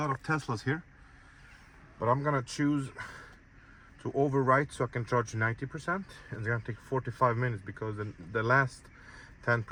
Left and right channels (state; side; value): identical; both; correlation 1.00